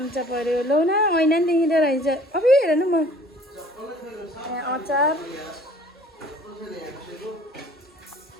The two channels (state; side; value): normal; both; correlation 0.52